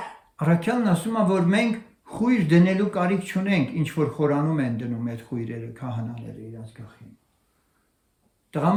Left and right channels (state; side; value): identical; both; correlation 1.00